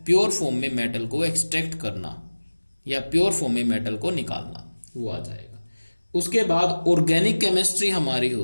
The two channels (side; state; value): both; inverted; correlation -1.00